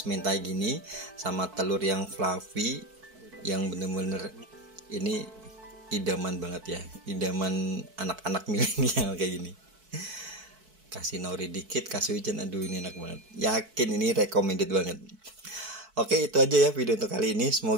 mentai gini sama telur yang fluffy, yang bener-bener ini idaman banget ya, idaman anak-anak milenial kayak gini. Kasih nori dikit, kasih wijen, aduh ini enak banget. Yakin ini recommended banget. Oke, itu aja ya video untuk kali ini.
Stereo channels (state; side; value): late; left; 4.6 ms